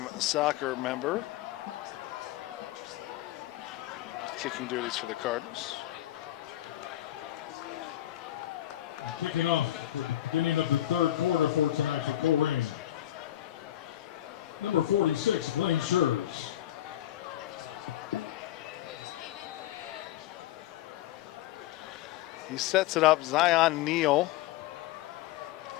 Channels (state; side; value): quieter; right; 13.6 dB